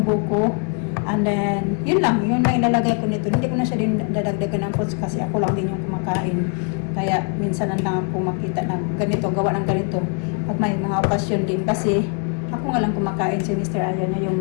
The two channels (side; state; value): right; quieter; 37.6 dB